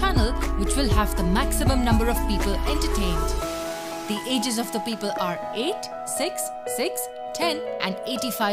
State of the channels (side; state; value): both; identical; correlation 1.00